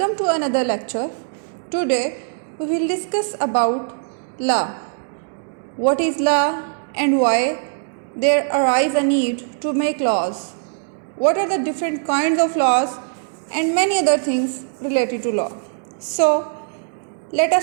to another lecture. Today we will discuss about law. What is law and why there arise a need to make laws? What are the different kinds of laws and many other things related to law? So let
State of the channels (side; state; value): left; silent; 65 dB below the other